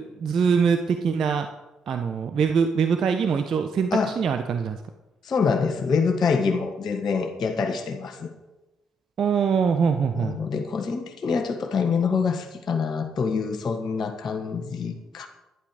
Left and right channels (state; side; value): normal; both; correlation 0.74